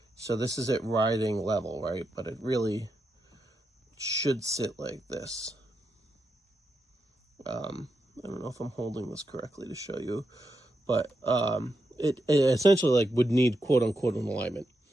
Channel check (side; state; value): both; normal; correlation 0.85